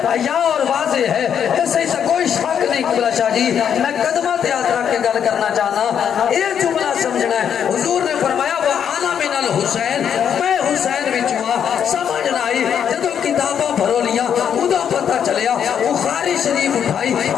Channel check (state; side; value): quieter; right; 8.4 dB